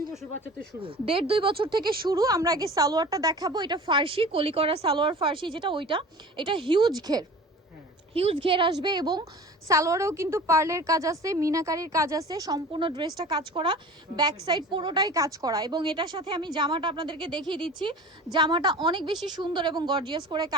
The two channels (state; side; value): normal; both; correlation 0.40